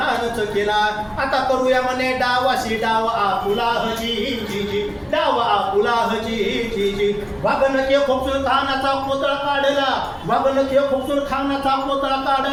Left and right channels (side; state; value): both; identical; correlation 1.00